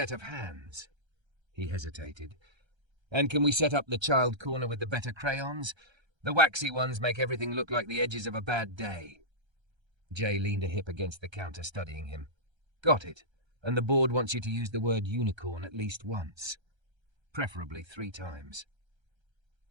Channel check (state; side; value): late; left; 1.3 ms